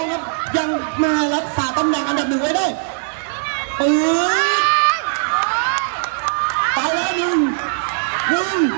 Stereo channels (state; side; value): silent; left; digital silence